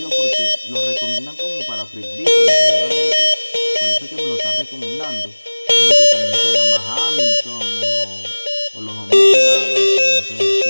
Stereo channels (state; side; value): inverted; both; correlation -1.00